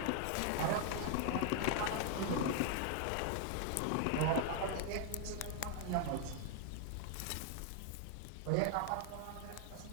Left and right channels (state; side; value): different; both; correlation 0.00